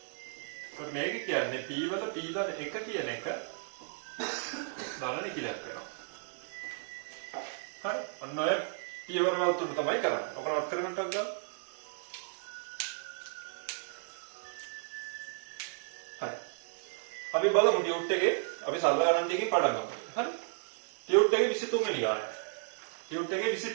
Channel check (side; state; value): left; silent; digital silence